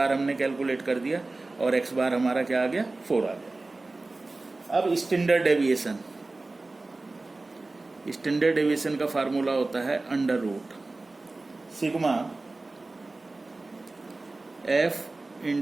हमने कैलकुलेट कर दिया और x बार हमारा क्या आ गया, 4 आ गया। अब स्टैंडर्ड डेविएशन का फार्मूला होता है under root sigma f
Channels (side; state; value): left; quieter; 3.2 dB